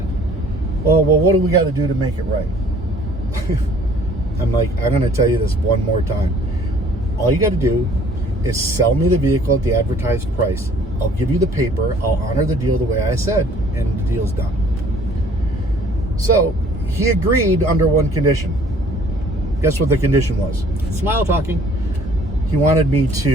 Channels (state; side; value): normal; both; correlation 0.56